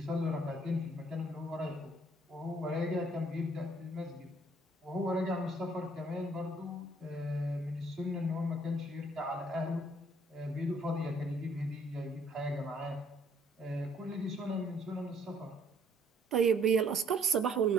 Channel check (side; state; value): both; normal; correlation 0.63